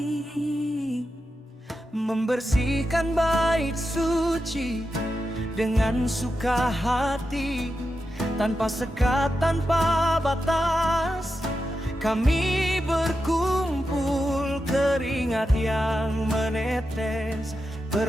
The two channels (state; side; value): normal; both; correlation 0.89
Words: membersihkan bait suci dengan suka hati. Tanpa sekat, tanpa batas, kami berkumpul, keringat yang menetes,